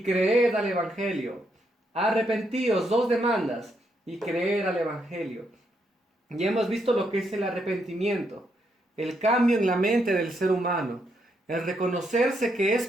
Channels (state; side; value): normal; both; correlation 0.78